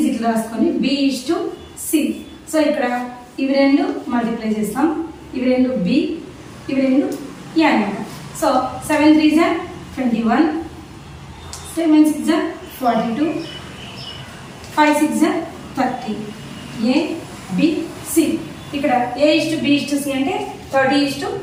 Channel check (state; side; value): identical; both; correlation 1.00